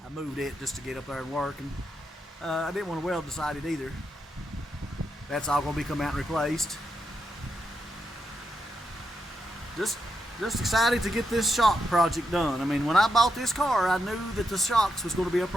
I moved it just to get up there and work, and I didn't want to weld beside it either. That's all going to be come out and replaced. Just excited to get this shock project done. I mean, when I bought this car, I knew that the shocks was going to be a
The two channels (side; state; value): both; normal; correlation 0.84